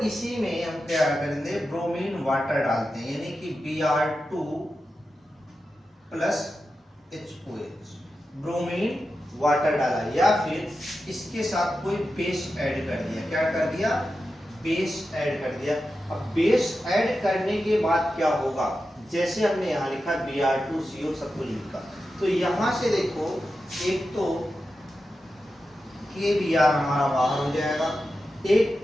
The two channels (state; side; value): normal; both; correlation 0.91